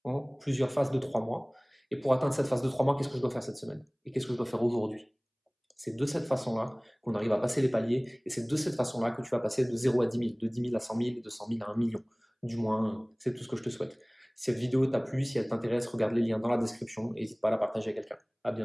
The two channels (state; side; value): identical; both; correlation 1.00